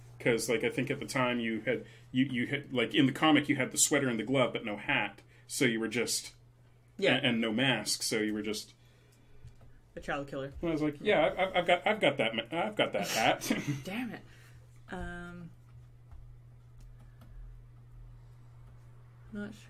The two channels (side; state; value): both; identical; correlation 1.00